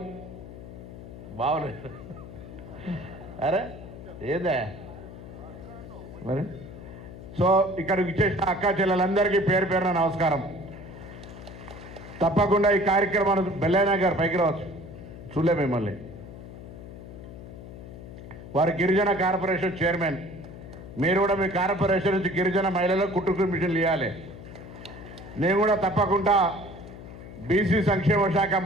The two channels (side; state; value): left; noise; hum, 14 dB below the sound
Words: బాగులేదు అరే ఏదే మరి. సో ఇక్కడికి ఇచ్చేసిన అక్కా చెల్లెలందరికీ పేరు పేరున నమస్కారం. తప్పకుండా ఈ కార్యక్రమాన్ని బెల్లయ్య గారు పైకి రావచ్చు, చూడలే మిమ్మల్ని. వారు గిరిజన కార్పొరేషన్ చైర్మన్. మీరు కూడా మీ కార్పొరేషన్ నుంచి గిరిజన మహిళలకు కుటుంబ మిషన్లు ఇవ్వాలి. నేను కూడా తప్పకుండా బీసీ సంక్షేమ శాఖ